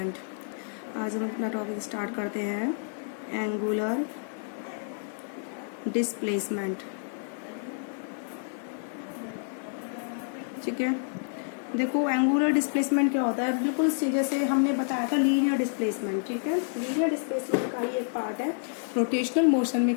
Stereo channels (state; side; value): silent; right; digital silence